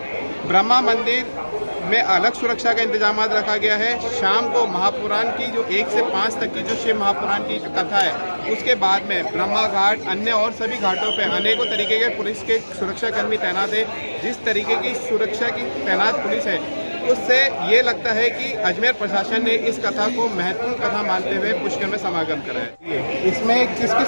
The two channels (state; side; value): inverted; both; correlation -1.00